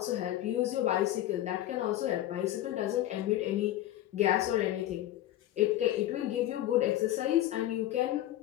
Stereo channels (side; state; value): right; quieter; 13.8 dB